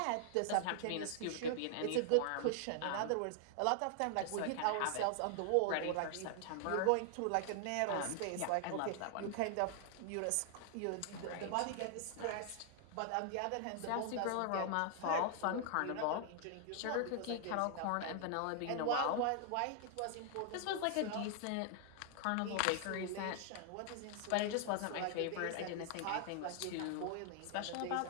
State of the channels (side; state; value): both; different; correlation 0.00